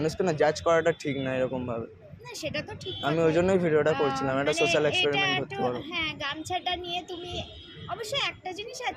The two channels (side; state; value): both; identical; correlation 1.00